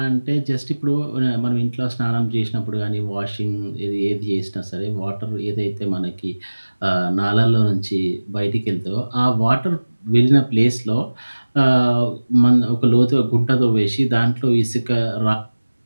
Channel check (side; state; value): both; inverted; correlation -1.00